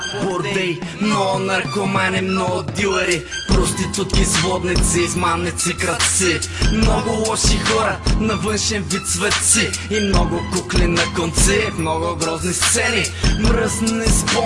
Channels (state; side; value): identical; both; correlation 1.00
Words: бордей, много наркомани, много дилери, проститутки, сводници, измамници, крадци, много лоши хора на външен вид светци и много кукли на конци, много грозни сцени, мръсни